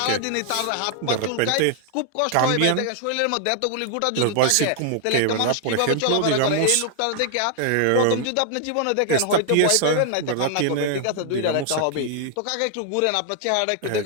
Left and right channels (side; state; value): both; different; correlation 0.00